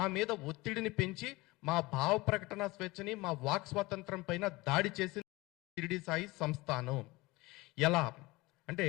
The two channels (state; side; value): quieter; right; 21.9 dB